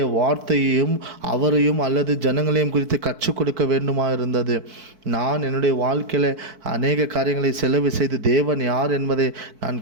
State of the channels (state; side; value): late; left; 4.6 ms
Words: வார்த்தையையும் அவரையும் அல்லது ஜனங்களையும் குறித்து கற்றுக் கொடுக்க வேண்டுமா இருந்தது. நான் என்னுடைய வாழ்க்கையில் அநேக காரியங்களை செலவு செய்து தேவன் யார் என்பதை நான்